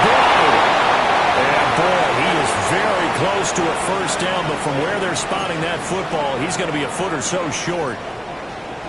And boy, he is very close to a first down, but from where they're spotting that football, he's going to be a foot or so short.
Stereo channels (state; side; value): identical; both; correlation 1.00